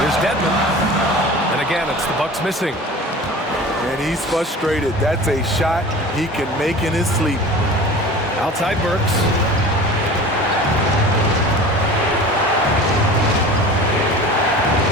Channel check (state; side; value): normal; both; correlation 0.38